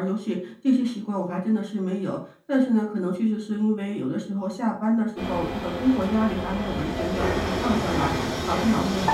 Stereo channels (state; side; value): identical; both; correlation 1.00